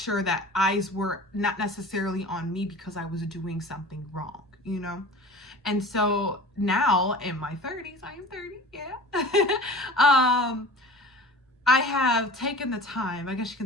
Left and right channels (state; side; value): normal; both; correlation 0.40